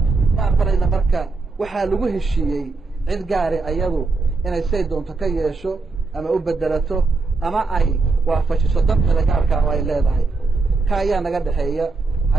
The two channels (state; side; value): quieter; left; 3.8 dB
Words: ma aqbalayna marka waxaa lagu heshiiyey cid gaari ayadu inay say doonto ka yeesho ama u bedelato ama ay waafajiso danta gaarka ay leedahay ka ayaa naga dhaxeeya